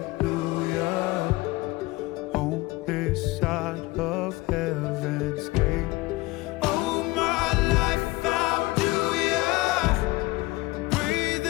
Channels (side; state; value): right; quieter; 21.2 dB